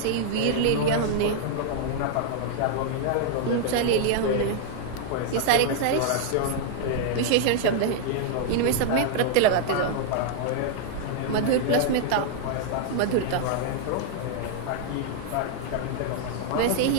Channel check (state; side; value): different; both; correlation -0.01